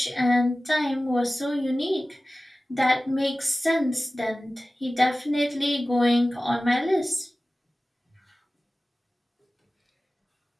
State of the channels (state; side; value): normal; both; correlation 0.97